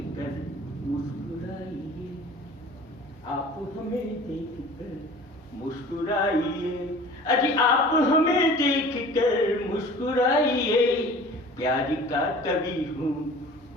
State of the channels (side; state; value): both; normal; correlation 0.44